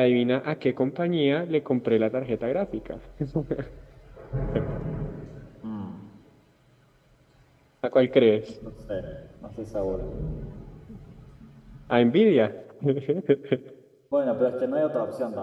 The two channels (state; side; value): identical; both; correlation 1.00